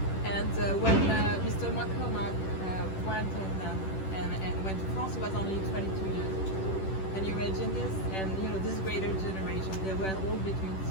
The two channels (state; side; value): late; right; 10 ms